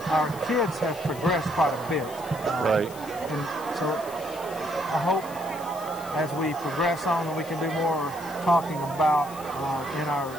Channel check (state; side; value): noise; left; hiss, 17 dB below the sound